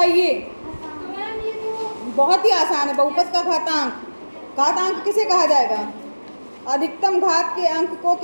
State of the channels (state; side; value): inverted; both; correlation -1.00